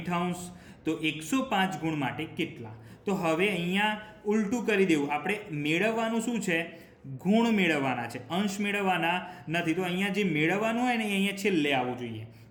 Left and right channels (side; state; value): both; identical; correlation 1.00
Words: તો 105 ગુણ માટે કેટલા? તો હવે અહીંયા ઉલટું કરી દેવું. આપણે મેળવવાનું શું છે? ગુણ મેળવવાના છે, અંશ મેળવવાના નથી. તો અહીંયા જે મેળવવાનું હોય ને એ અહીંયા છેલ્લે આવવું જોઈએ.